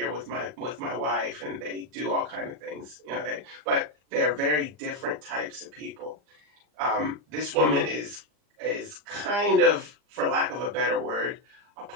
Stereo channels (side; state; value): left; late; 39 ms